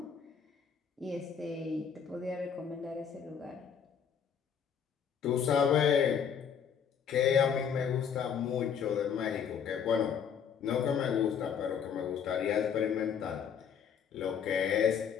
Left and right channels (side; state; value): right; quieter; 7.5 dB